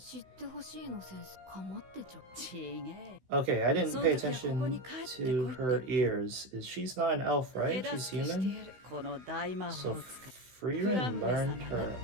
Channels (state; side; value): late; left; 16 ms